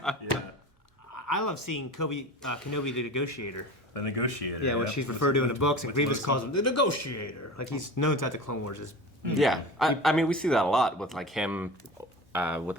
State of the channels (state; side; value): normal; both; correlation 0.34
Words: I love seeing Kenobi the negotiator. The negotiator. Yeah, what she's referred to in the books, and Grievous calls him the negotiator. Like he's known throughout the Clone Wars as. Yeah, I mean we see that a lot with like him with